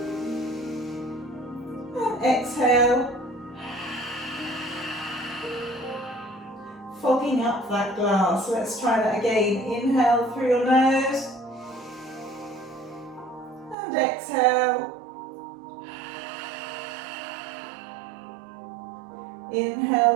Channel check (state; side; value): drops out; left; at 13.8 s